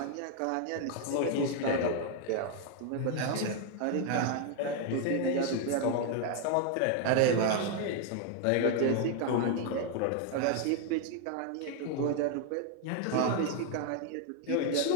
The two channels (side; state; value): both; different; correlation 0.00